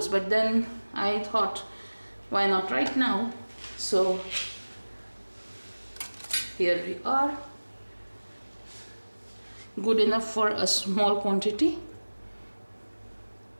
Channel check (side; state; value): both; inverted; correlation -1.00